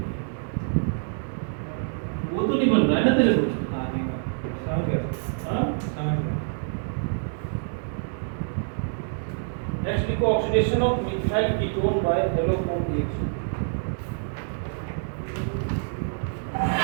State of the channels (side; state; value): left; silent; digital silence